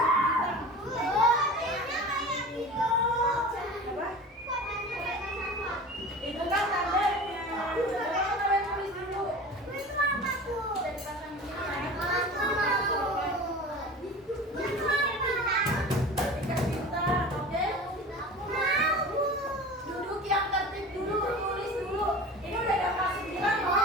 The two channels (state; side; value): normal; both; correlation 0.36